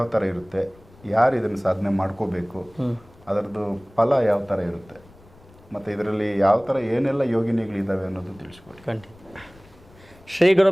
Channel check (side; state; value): left; noise; rumble, 25 dB below the sound